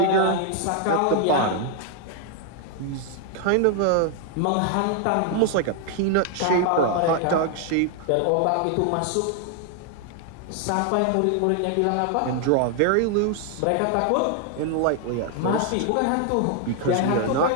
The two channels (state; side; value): different; both; correlation 0.00